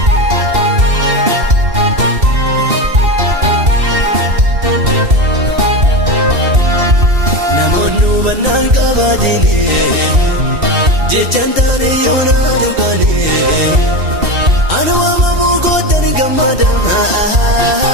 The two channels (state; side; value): late; left; 2.7 ms